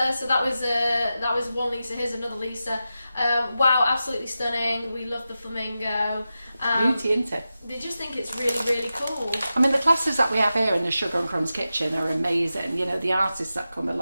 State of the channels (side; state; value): both; inverted; correlation -0.92